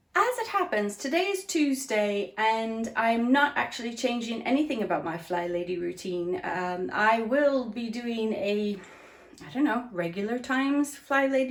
As it happens, today is Tuesday and I'm not actually changing anything about my Fly Lady routine. I will be doing a regular times Fly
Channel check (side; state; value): both; identical; correlation 1.00